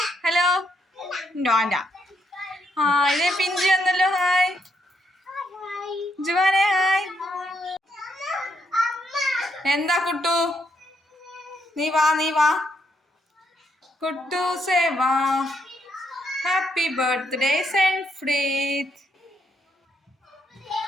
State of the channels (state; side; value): normal; both; correlation 0.76